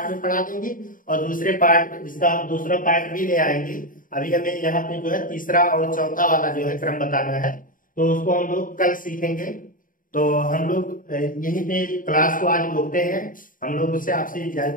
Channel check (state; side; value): late; right; 0.39 ms